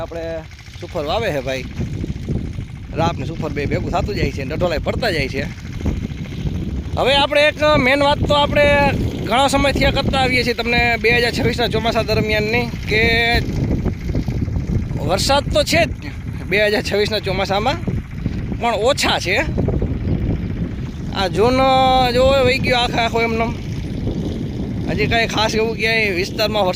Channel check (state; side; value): identical; both; correlation 1.00